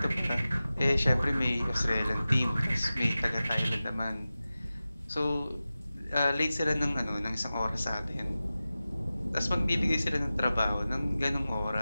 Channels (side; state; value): both; inverted; correlation -0.95